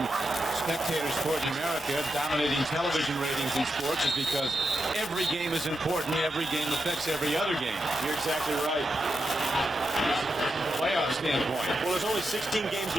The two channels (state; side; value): normal; both; correlation 0.86